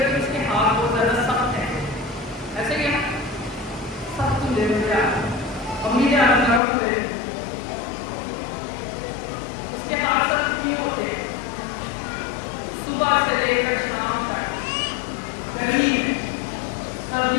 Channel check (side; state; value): right; drops out; at 6.6 s